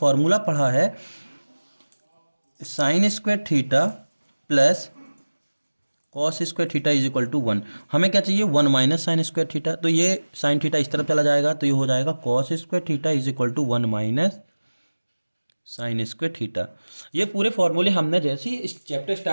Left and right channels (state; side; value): inverted; both; correlation -1.00